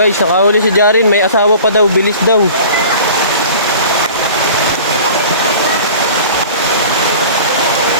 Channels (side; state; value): both; inverted; correlation -0.42